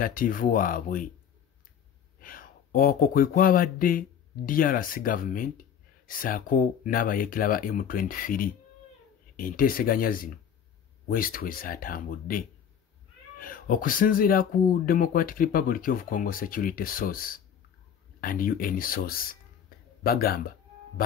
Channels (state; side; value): quieter; right; 8.3 dB